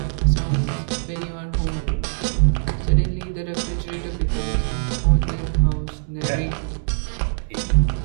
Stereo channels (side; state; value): left; silent; digital silence